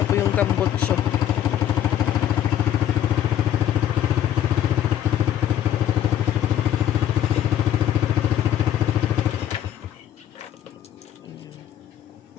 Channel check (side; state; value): right; quieter; 11.1 dB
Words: po yung tambutso.